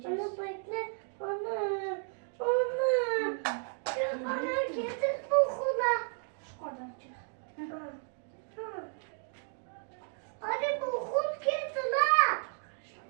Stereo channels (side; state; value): left; silent; 56 dB below the other